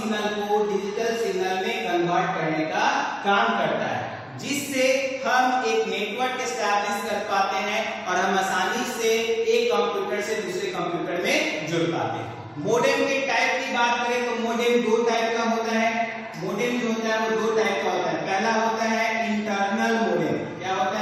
को डिजिटल सिग्नल में कन्वर्ट करने का काम करता है, जिससे हम एक नेटवर्क एस्टैब्लिश कर पाते हैं और हम आसानी से एक कंप्यूटर से दूसरे कंप्यूटर में जुड़ पाते हैं। मोडेम के टाइप की बात करें तो मोडेम दो टाइप का होता है। मोडेम जो होता है वो दो टाइप का होता है। पहला होता है इंटरनल मोडेम। क्या होता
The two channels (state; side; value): identical; both; correlation 1.00